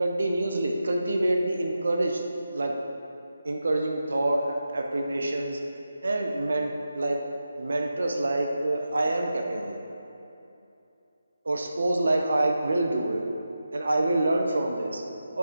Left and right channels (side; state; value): both; inverted; correlation -0.90